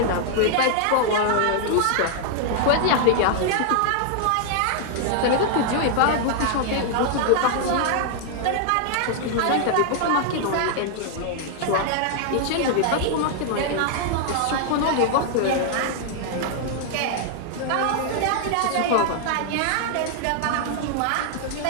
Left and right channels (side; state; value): both; different; correlation 0.00